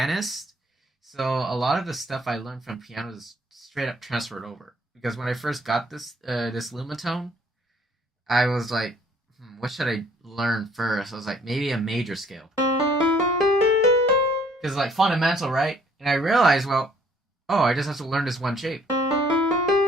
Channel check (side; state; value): both; normal; correlation 0.61